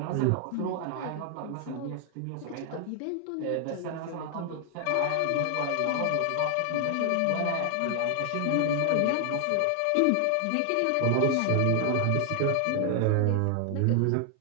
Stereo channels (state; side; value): different; both; correlation 0.00